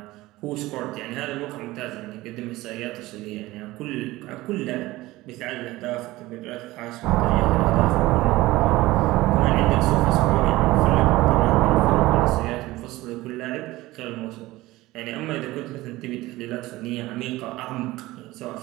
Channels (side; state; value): left; quieter; 18.6 dB